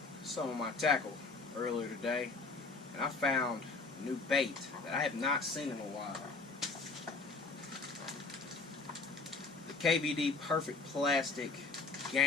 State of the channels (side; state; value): right; quieter; 4.0 dB